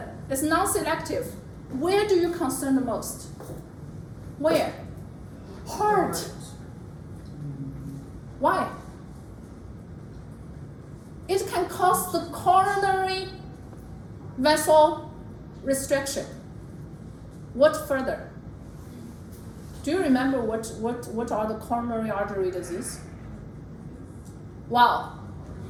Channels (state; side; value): identical; both; correlation 1.00